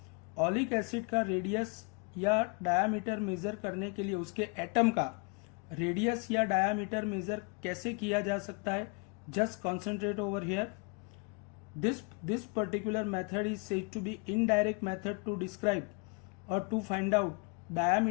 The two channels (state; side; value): quieter; right; 33.6 dB